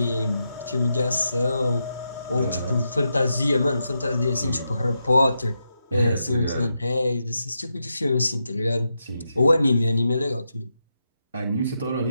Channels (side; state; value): both; inverted; correlation -0.85